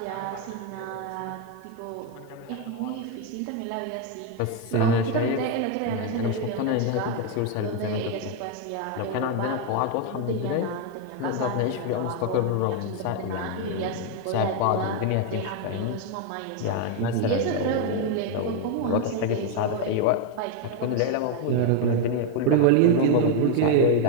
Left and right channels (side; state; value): both; different; correlation 0.01